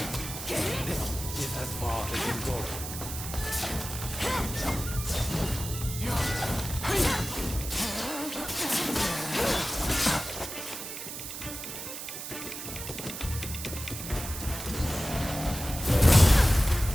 This is as far as you go.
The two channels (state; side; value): noise; right; hiss, 8 dB below the sound